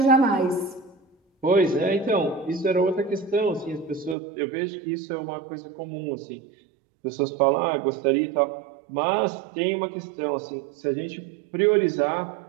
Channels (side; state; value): left; drops out; at 4.2 s